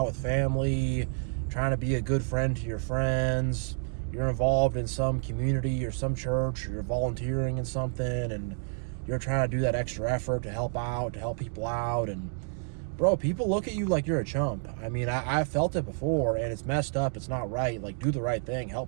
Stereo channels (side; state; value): left; silent; 58 dB below the other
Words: with family, trying to be a good friend to your friends, you're involved in some community or some church, or you're volunteering in something, and you're trying to do that extra effort to help out, to help people out, and bro, people look at you like you're a chump. I mean, I've felt it before, and it's messed up. It's not right. Like, do the right thing,